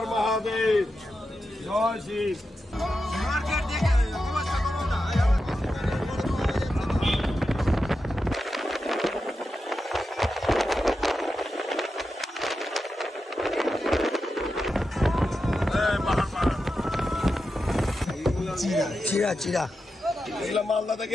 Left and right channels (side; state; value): both; normal; correlation 0.89